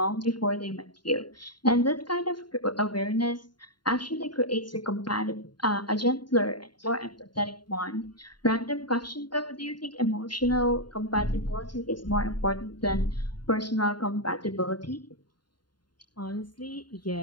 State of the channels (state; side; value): late; right; 0.71 ms